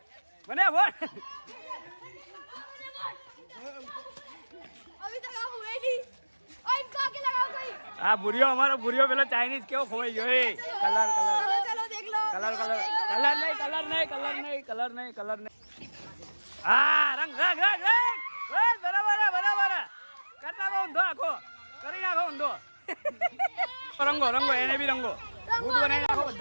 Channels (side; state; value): both; inverted; correlation -1.00